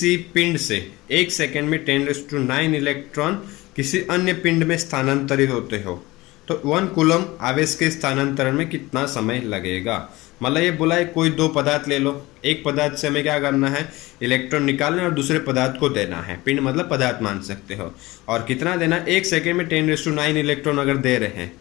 पिंड से 1 सेकेंड में 10⁹ इलेक्ट्रॉन किसी अन्य पिंड में स्थानांतरित होते हो तो 1 कूलम आवेश के स्थानांतरण में कितना समय लगेगा। मतलब ये बोला है कोई दो पदार्थ ले लो, एक पदार्थ से हमें क्या करना है, इलेक्ट्रॉन निकालना है और दूसरे पदार्थ को देना है। पिंड मतलब पदार्थ मान सकते हो। और कितना देना, 1 सेकेंड में 10⁹ इलेक्ट्रॉन अगर दे रहे हैं,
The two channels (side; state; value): right; quieter; 20.1 dB